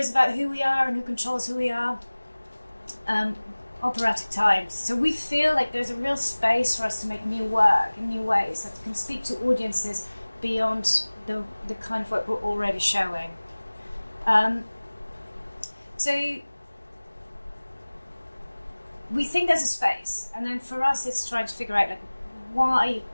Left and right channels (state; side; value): inverted; both; correlation -1.00